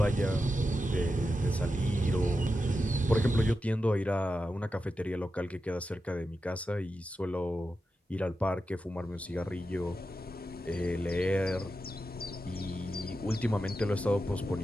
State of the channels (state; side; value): normal; both; correlation 0.90